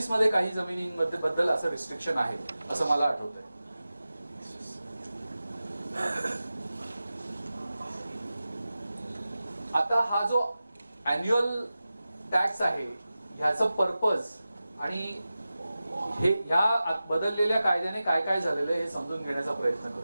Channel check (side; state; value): both; inverted; correlation -0.95